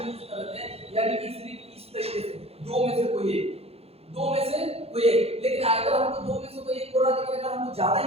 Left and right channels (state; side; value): late; left; 0.29 ms